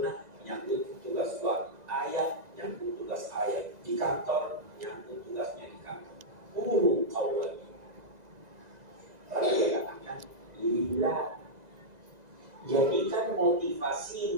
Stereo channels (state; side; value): late; left; 2.0 ms